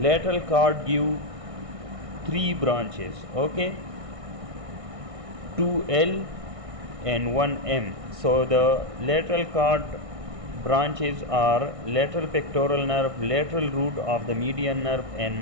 cord give 3 branches, okay, 2L and 1M. So the lateral cord branches are lateral pectoral nerve, lateral root of the median nerve, and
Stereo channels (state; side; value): late; left; 1.6 ms